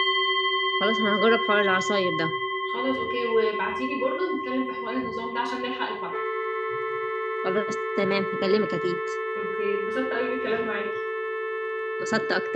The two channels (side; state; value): both; identical; correlation 1.00